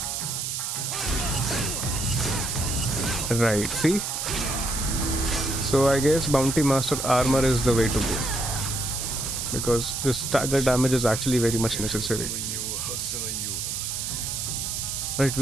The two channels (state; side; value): noise; right; hiss, 3 dB below the sound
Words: Right, see? So I guess Bounty Master armor is the way to go because this stagger damage is actually very much necessary. Right,